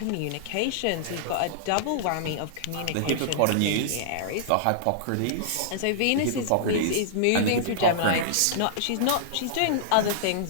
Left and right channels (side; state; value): both; different; correlation -0.02